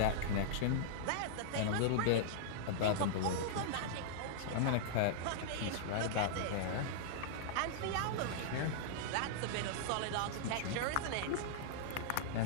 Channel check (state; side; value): different; both; correlation -0.02